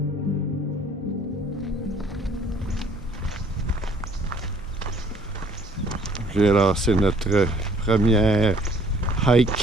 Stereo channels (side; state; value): both; normal; correlation 0.58